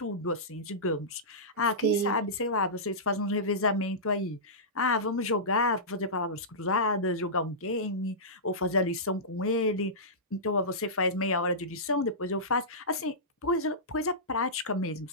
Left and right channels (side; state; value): both; normal; correlation -0.17